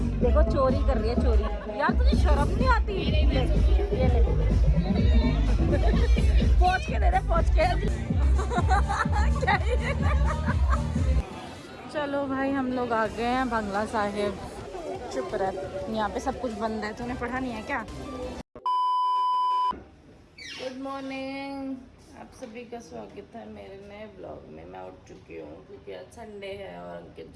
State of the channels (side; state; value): both; identical; correlation 1.00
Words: देखो, चोरी कर रही है, चोरी। यार तुझे शर्म नहीं आती? ये ले पहुंच के दे दे, पहुंच के। चलो भाई, हम लोग आ गए हैं बंगला साहिब। चुप रह, यहाँ पे सब कुछ बंद है। तूने पढ़ा नहीं है क्या? गुड मॉर्निंग, आप सभी का स्वागत है मेरे नए ब्लॉग में। मैं उठ चुकी हूँ क्योंकि आज संडे है और अंकित